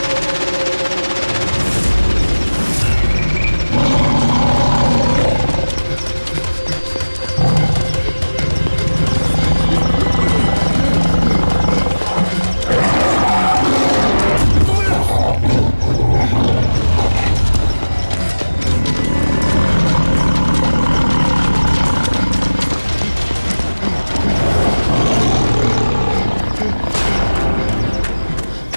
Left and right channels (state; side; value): inverted; both; correlation -1.00